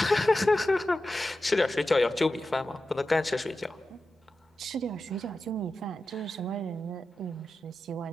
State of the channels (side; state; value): both; normal; correlation 0.92